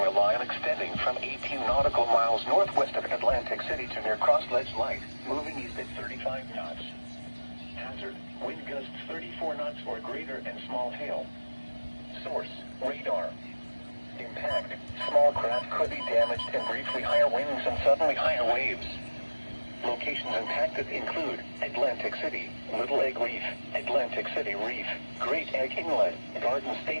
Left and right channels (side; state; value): both; inverted; correlation -1.00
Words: a line extending from 18 nautical miles northwest of Atlantic City to near Cross Ledge Light, moving east at 35 knots. Hazard, wind gusts 34 knots or greater and small hail. Source, radar. Impact, small craft could be damaged and briefly higher winds and suddenly higher waves. Locations impacted include Atlantic City, Little Egg Reef, Atlantic City Reef, Great Egg Inlet, Garden